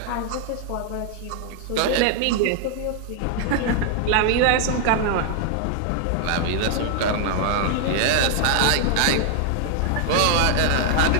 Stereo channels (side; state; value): both; different; correlation 0.00